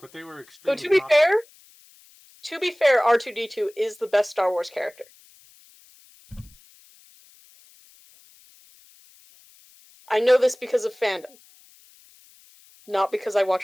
they were Though extremely. to be fair, R2-D2 is the best Star Wars character. I know this because of fandom, not because I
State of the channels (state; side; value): noise; left; hiss, 27 dB below the sound